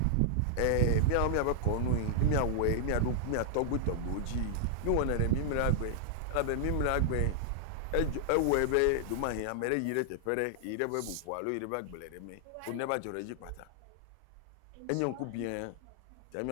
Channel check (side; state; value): both; different; correlation -0.01